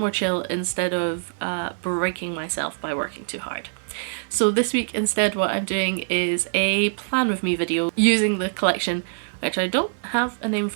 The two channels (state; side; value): silent; left; digital silence